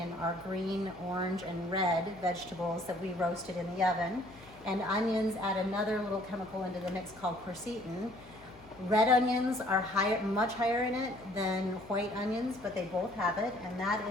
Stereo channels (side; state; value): left; noise; hum, 23 dB below the sound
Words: our green, orange, and red vegetables that we roasted in the oven. And onions add another little chemical into the mix called quercetin. Red onions are much higher in it than white onions, but they both have it, and that